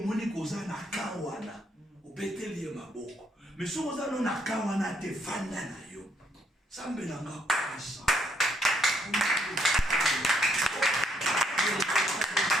moi, c'est que na kawana, obeteli maboko. Mais si vous avez na kawana te fanda na yo, ça me donne ça.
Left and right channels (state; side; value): normal; both; correlation 0.71